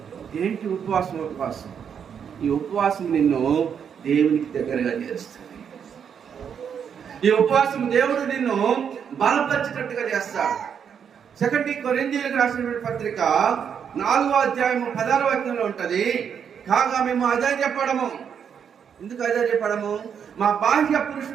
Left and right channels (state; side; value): quieter; left; 7.6 dB